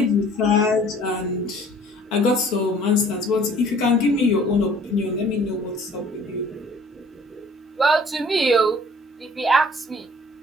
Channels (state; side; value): normal; both; correlation 0.53